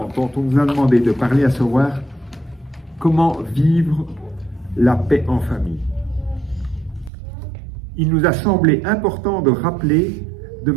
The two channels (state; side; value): drops out; left; at 7.1 s